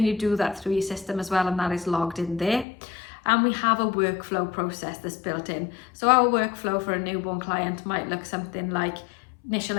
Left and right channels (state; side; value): drops out; right; at 2.7 s